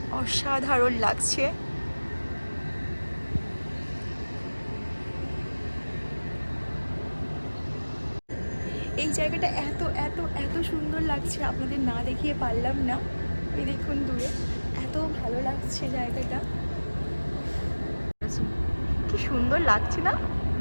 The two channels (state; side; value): inverted; both; correlation -1.00